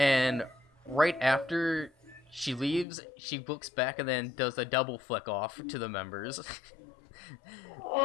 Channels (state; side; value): drops out; right; at 2.9 s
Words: right after she leaves, she looks back and then does a double flick off to the members.